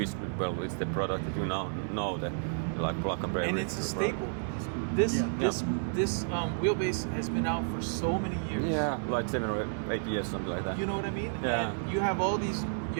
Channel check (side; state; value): left; silent; 57 dB below the other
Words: it's the product that you now know, the plug and play. And it's a staple. This wheelbase has been out for so many years. Yeah, 7 or 8 years, something like that. You know what I mean? Yeah. And you have